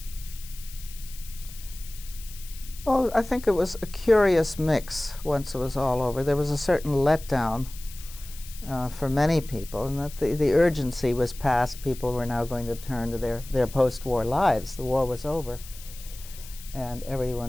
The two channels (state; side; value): noise; left; hiss, 17 dB below the sound